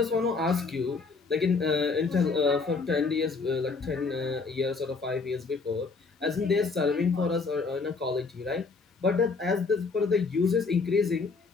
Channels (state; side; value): quieter; right; 4.4 dB